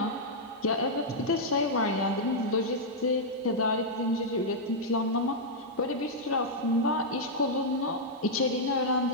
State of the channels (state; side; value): normal; both; correlation -0.06